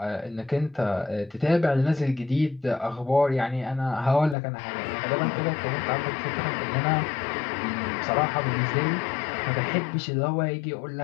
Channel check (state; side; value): drops out; right; at 4.4 s